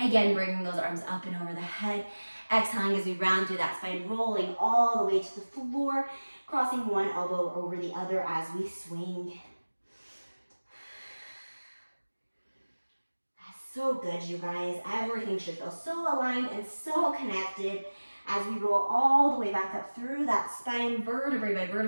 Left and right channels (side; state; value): both; inverted; correlation -1.00